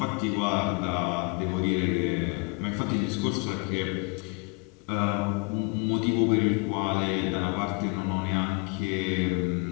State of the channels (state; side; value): quieter; right; 32.1 dB